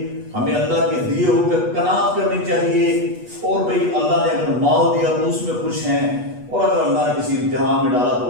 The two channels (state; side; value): late; left; 8.2 ms